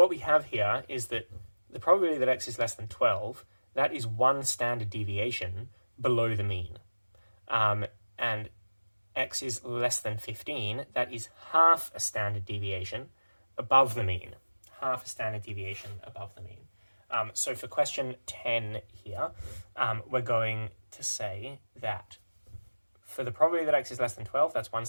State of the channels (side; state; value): both; inverted; correlation -1.00